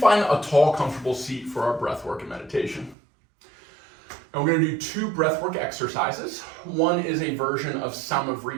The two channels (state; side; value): drops out; left; at 3.0 s